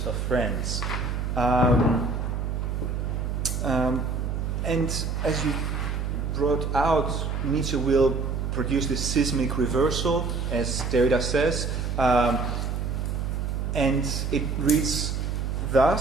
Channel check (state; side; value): noise; right; hum, 1 dB below the sound